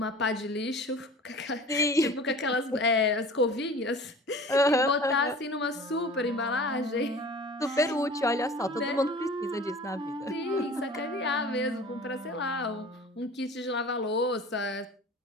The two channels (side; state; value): both; normal; correlation 0.42